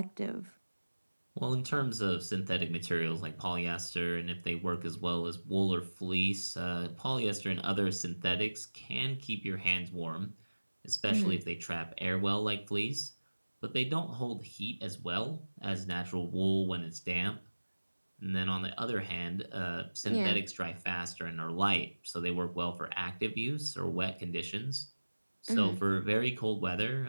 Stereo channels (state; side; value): inverted; both; correlation -1.00